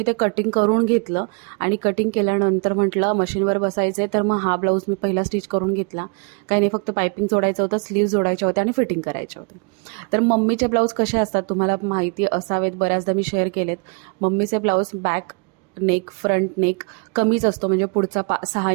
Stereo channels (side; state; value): left; quieter; 35.2 dB